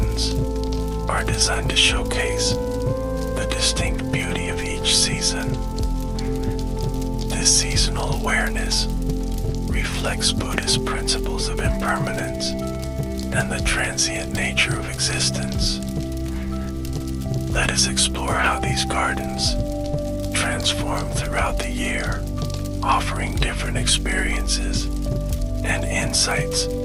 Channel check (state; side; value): identical; both; correlation 1.00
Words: are designed to showcase the distinct beauty of each season. This seasonal awareness reflects Buddhist principles of impermanence and the transient nature of existence. Let us explore how these gardens transform throughout the year, offering different experiences and insights